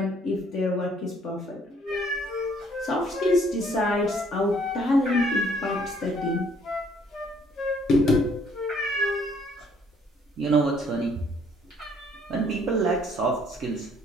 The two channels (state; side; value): normal; both; correlation 0.63